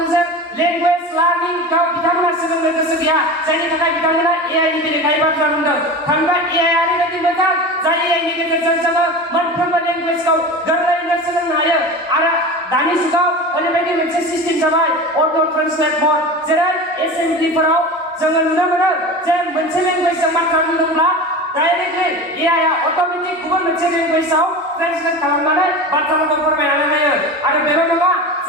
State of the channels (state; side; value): normal; both; correlation 0.30